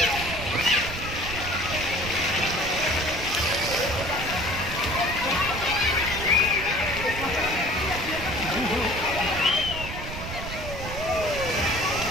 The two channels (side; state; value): right; noise; rumble, 8 dB below the sound